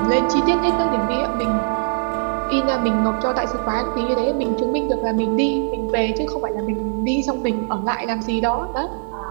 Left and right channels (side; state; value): left; silent; digital silence